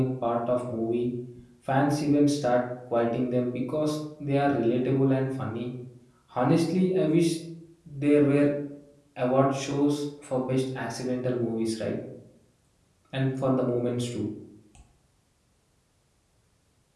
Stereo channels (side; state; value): both; identical; correlation 1.00